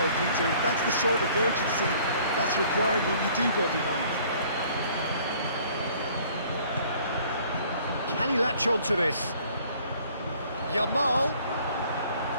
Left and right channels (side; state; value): both; inverted; correlation -0.56